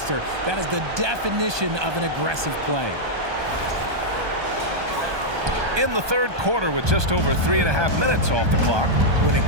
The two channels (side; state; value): left; late; 1.2 ms